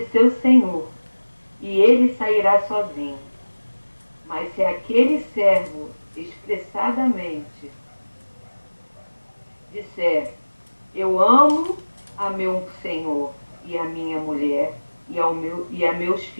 senhor, e ele sairá sozinho. Mas se aquele servo expressadamente disser: eu amo a meu senhor e a minha mulher e a meus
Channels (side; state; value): both; inverted; correlation -1.00